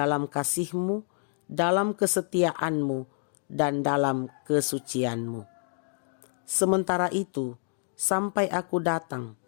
kasihmu, dalam kesetiaanmu, dan dalam kesucianmu. Sementara itu, sampai aku datang,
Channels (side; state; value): right; silent; 59 dB below the other